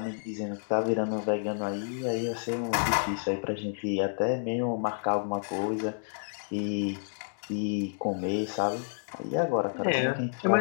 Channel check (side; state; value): right; silent; digital silence